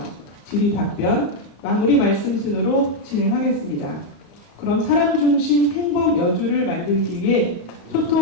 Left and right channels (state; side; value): late; right; 34 ms